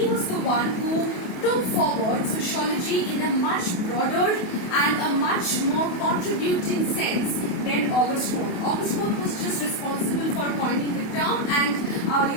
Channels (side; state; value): right; late; 28 ms